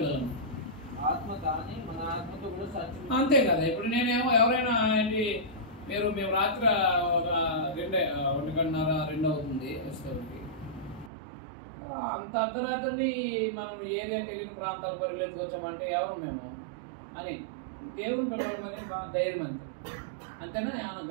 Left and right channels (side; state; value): left; drops out; at 11.1 s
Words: ఆత్మ కానీ మన ఆత్మతో కూడా సాధ్యం. అంతే కదా. ఇప్పుడు నేనేమో ఎవరైనా ఏంటి మేము రాత్రి 1:30-2 అవుతుంది వస్తుంది, అంత అర్ధరాత్రిని మనం ఏరియాకి వెళ్ళిన ప్రాంతాల పరిగెత్తుకొచ్చామంటే ఎవరు మేము అని దేవుని పిల్లలమని మా ధైర్యం అంతే. అంతేనా? ఏమైనా